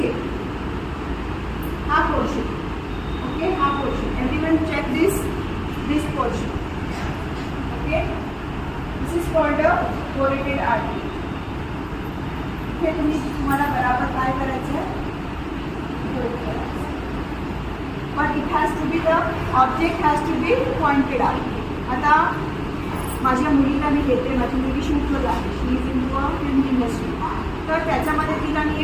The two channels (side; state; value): both; identical; correlation 1.00